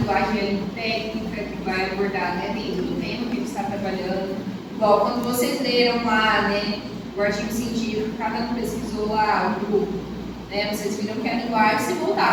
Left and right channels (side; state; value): both; identical; correlation 1.00